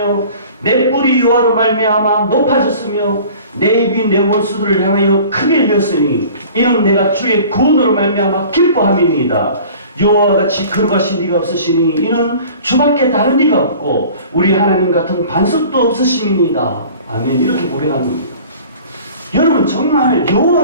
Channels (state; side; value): inverted; both; correlation -0.45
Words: 내 뿔이 여호와로 말미암아 높아졌으며 내 입이 내 원수들을 향하여 크게 열렸으니 이는 내가 주의 구원으로 말미암아 기뻐함이니이다. 여호와와 같이 거룩하신 이가 없으시니 이는 주밖에 다른 이가 없고 우리 하나님 같은 반석도 없으심이니이다. 아멘. 이렇게 고백한 겁니다. 여러분 정말